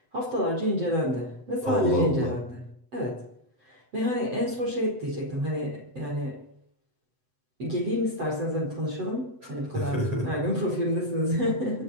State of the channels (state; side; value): late; left; 7.9 ms